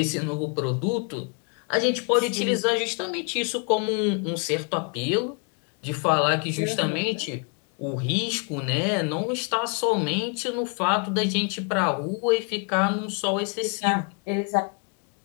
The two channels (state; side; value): quieter; right; 36.6 dB